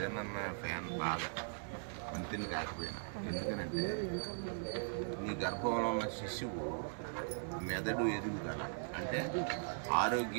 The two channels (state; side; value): silent; left; digital silence